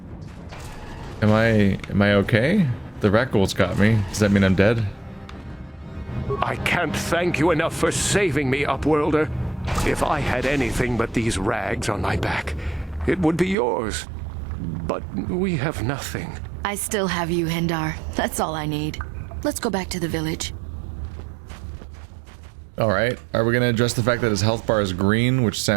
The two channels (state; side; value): drops out; left; at 13.6 s